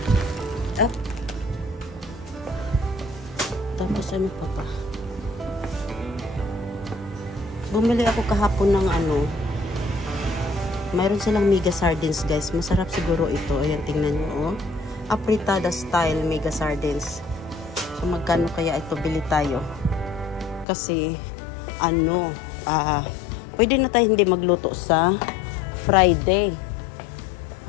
Tapos ano pa ba? Bumili ako kahapon ng mayroon silang mega sardines guys. Masarap siguro ito. Ayan, tingnan nyo apritada style mega sardines. So magkano kaya ito, bili tayo? Kasi pwede na tayo hindi magluto sa Friday.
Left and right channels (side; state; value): right; drops out; at 20.7 s